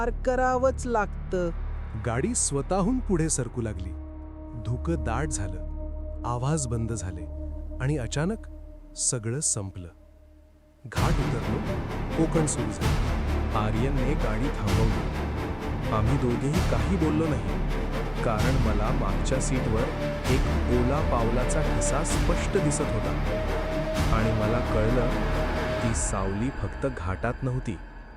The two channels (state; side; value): identical; both; correlation 1.00